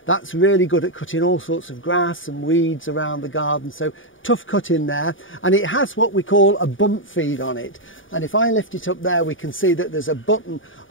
That's really good at cutting all sorts of grass and weeds around the garden, so tough cut in there. And it has what we call a bump feed on it, and if I lift it up there we can see that there's a button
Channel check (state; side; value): late; right; 0.57 ms